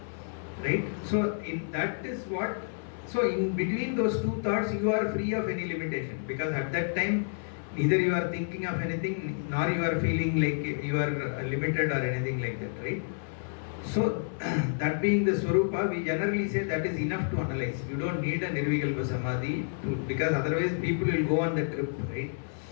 Right? So in that is what, so in between those two thoughts you are free of any limitation, because at that time neither you are thinking of anything nor you are feeling like you are limited or anything like that, right? So that being the Swarupa, we generally say that is enough to analyze. You don't need a Nirvikalpa Samadhi because otherwise people will go on the trip, right?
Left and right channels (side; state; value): right; silent; 58 dB below the other